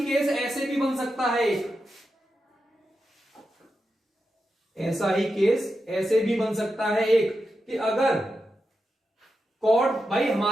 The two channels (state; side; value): normal; both; correlation 0.88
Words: केस ऐसे भी बन सकता है, ऐसा ही केस ऐसे भी बन सकता है एक, कि अगर कॉर्ड भाई